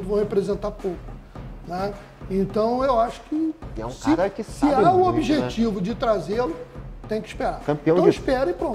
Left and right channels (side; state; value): both; identical; correlation 1.00